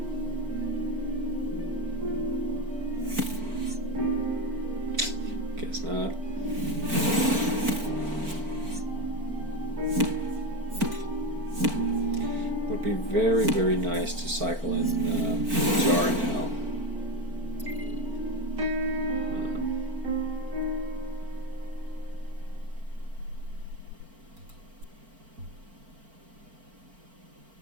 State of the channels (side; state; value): left; late; 4.5 ms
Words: Guess not. Would be very, very nice to cycle in Jar now.